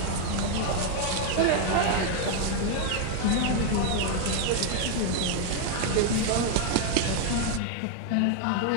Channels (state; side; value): different; both; correlation 0.01